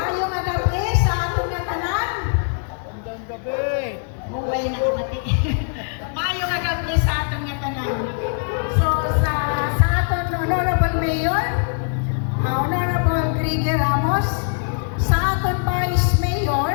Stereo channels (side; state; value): right; silent; 60 dB below the other